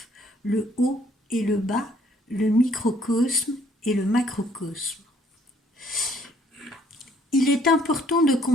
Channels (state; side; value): normal; both; correlation 0.63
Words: le haut et le bas, le microcosme et le macrocosme. Il est important de